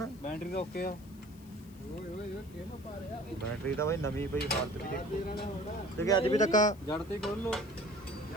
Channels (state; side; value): noise; left; hiss, 25 dB below the sound